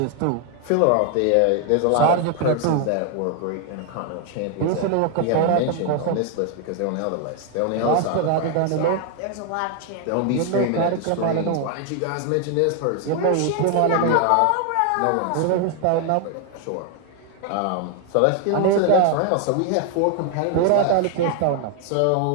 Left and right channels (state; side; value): different; both; correlation 0.00